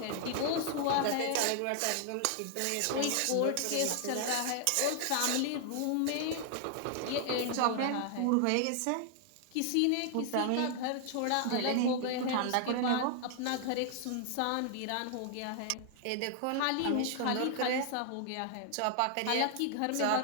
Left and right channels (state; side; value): different; both; correlation 0.00